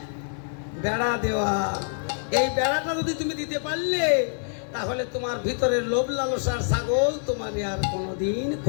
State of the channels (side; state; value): right; silent; digital silence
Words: বেড়া দেওয়া। এই বেড়াটা যদি তুমি দিতে পারলে তাহলে তোমার ভিতরের লোভ লালসার ছাগল তোমার আর কোনোদিন